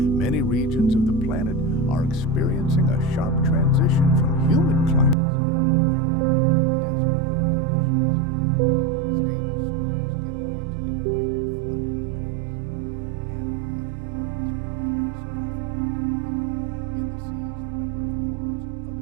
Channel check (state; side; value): drops out; left; at 5.2 s